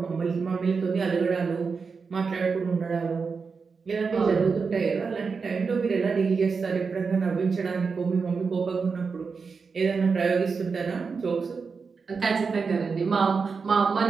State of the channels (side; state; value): left; quieter; 5.1 dB